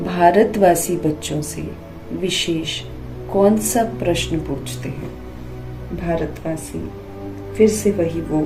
भारतवासी बच्चों से विशेष कौन सा प्रश्न पूछते हैं? भारतवासी फिर से वही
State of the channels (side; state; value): both; identical; correlation 1.00